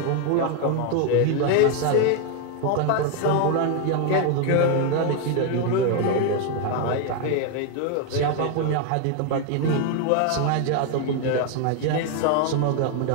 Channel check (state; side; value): different; both; correlation 0.01